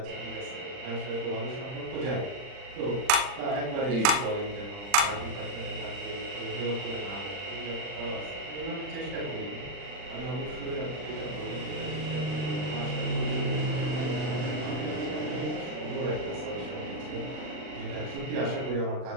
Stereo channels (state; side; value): late; left; 39 ms